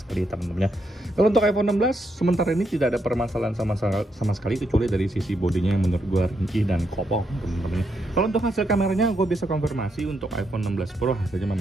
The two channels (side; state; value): both; normal; correlation 0.79